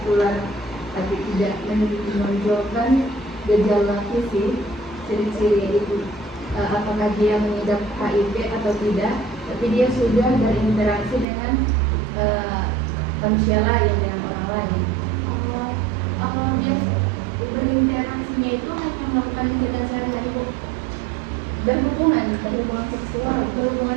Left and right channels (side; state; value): left; drops out; at 11.2 s